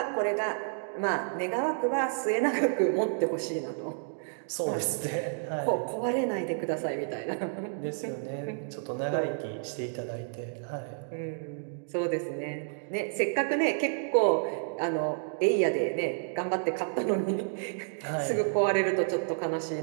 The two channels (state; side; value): silent; left; digital silence